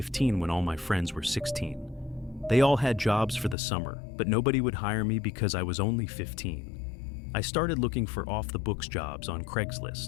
when all my friends were 16. They all had jobs for the summer, but nobody would hire me because I was only 15. I started looking for off-the-books jobs on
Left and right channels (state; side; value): drops out; right; at 3.6 s